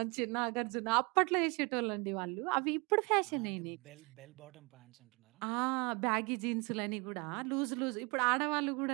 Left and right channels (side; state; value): left; quieter; 29.3 dB